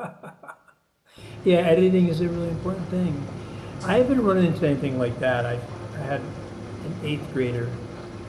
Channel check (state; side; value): identical; both; correlation 1.00